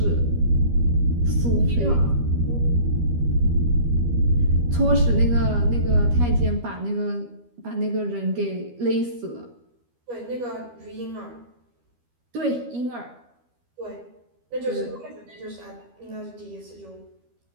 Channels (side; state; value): left; late; 12 ms